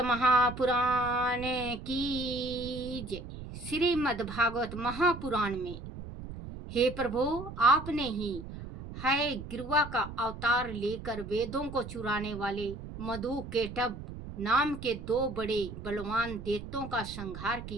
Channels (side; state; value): right; noise; rumble, 11 dB below the sound